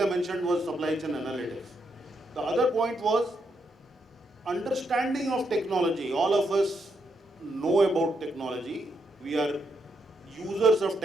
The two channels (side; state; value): both; normal; correlation 0.80